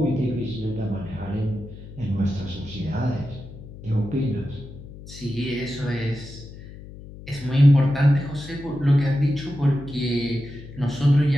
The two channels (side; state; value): left; noise; hum, 15 dB below the sound